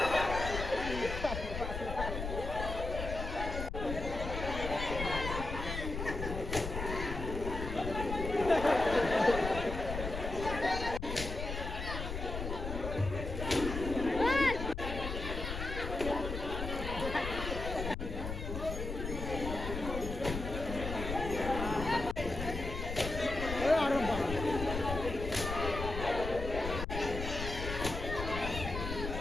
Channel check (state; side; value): noise; left; rumble, 5 dB below the sound